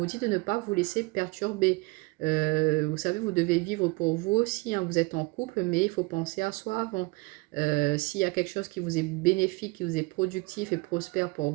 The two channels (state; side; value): quieter; left; 25.4 dB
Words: dit de ne pas vous laisser perturber. Vous savez, vous devez vivre pour vous aussi, hein. Vous êtes en couple, mais il faut penser à soi avant. S'il y a quelque chose qui vous est bénéfique, qui vous est productif et prospère pour